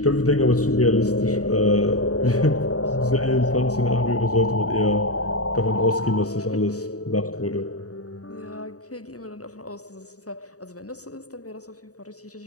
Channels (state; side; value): late; right; 0.66 ms